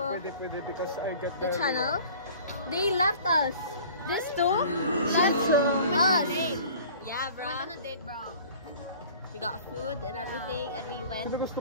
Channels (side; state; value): both; inverted; correlation -0.46